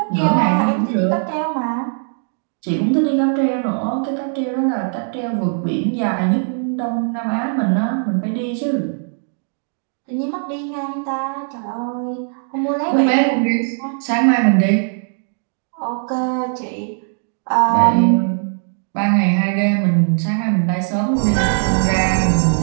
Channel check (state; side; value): silent; left; 56 dB below the other